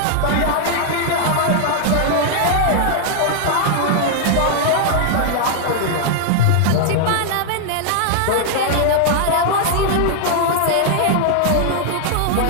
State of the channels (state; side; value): different; both; correlation 0.00